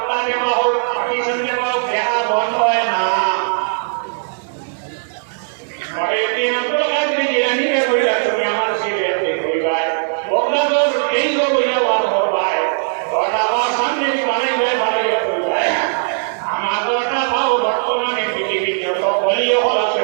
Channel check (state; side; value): silent; left; digital silence